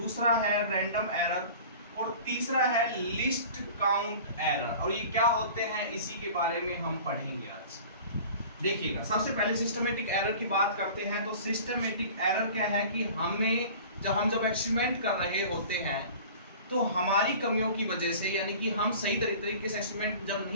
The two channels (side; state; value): both; inverted; correlation -0.42